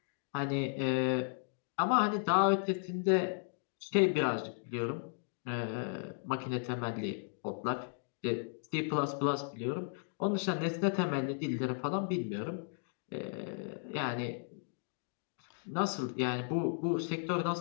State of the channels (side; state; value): right; silent; digital silence